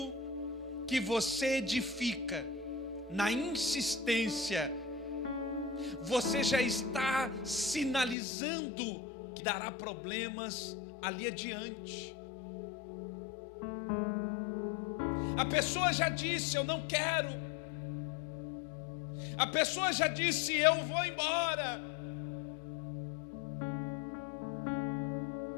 que você edifica na insistência, você já está sinalizando que dará problemas ali adiante. A pessoa já disse: eu não quero. A pessoa já disse: eu vou embora.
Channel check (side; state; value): right; drops out; at 8.2 s